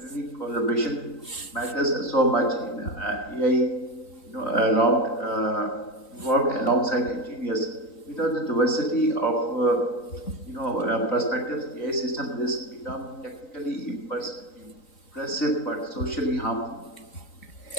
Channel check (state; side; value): late; right; 3.9 ms